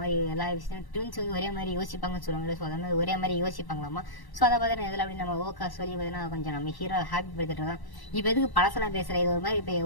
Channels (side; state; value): right; late; 1.0 ms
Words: எல்லா விஷயம் ட்வின்ஸ் வந்து ஒரே மாதிரி யோசிப்பாங்கன்னு சொல்லுவாங்க. ஸோ அந்த மாதிரி ஒரே மாதிரி யோசிப்பாங்களாமா. ஸோ அதை பார்த்தீங்கன்னா இதில் அப்படி நம்ம ஓக்கா சொல்லி பார்த்தீங்கன்னா கொஞ்சம் நம்ம ஹீரோ ஹாப்பி படுத்திட்டு இருக்கோம். இப்போ எதுக்கு பழசெல்லாம் பேசுகிறேன், இது ஒரு மாதிரி இப்போ